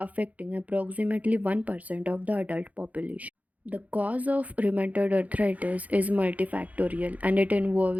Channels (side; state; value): left; late; 0.073 ms